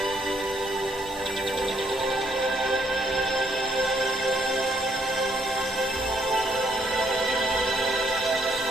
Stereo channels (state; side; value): normal; both; correlation 0.71